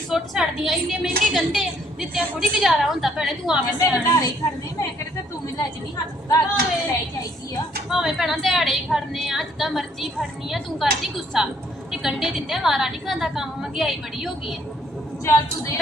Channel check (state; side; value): normal; both; correlation 0.66